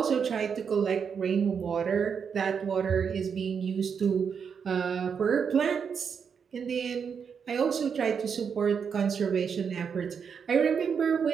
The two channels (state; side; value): quieter; left; 6.7 dB